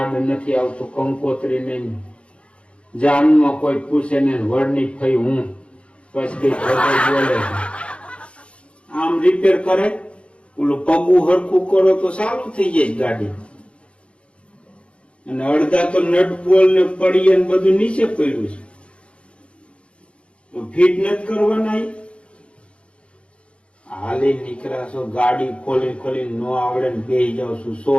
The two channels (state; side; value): late; right; 0.060 ms